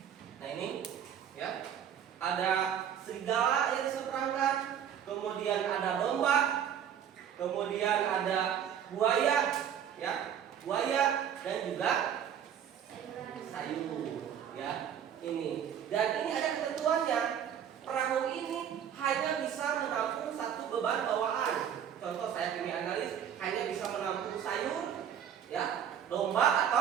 Nah ini, ya, ada serigala yang diseberangkan. Kemudian ada domba. Kemudian ada buaya, ya, buaya dan juga sayur, ya. Ini. Dan ini ada ketentuannya. Perahu ini hanya bisa menampung satu beban bawaan. Contoh saya kimia analis hanya bisa menampung sayur, ya, domba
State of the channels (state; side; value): quieter; left; 9.0 dB